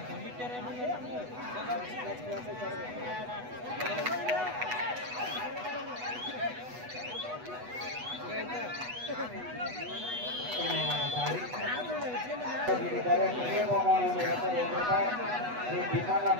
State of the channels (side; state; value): left; late; 8.1 ms